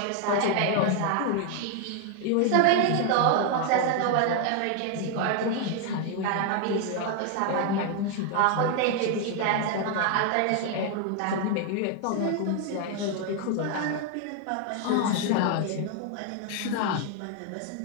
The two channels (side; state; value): both; different; correlation 0.00